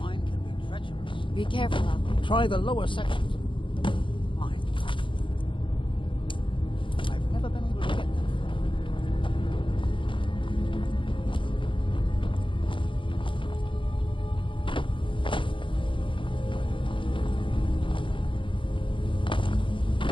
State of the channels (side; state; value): right; late; 0.25 ms